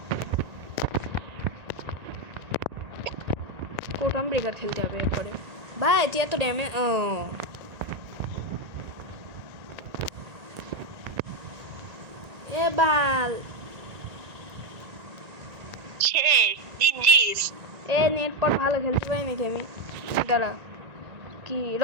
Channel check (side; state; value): left; late; 1.9 ms